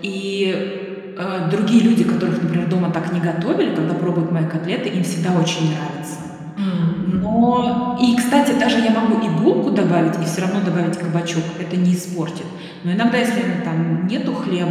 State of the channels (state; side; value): identical; both; correlation 1.00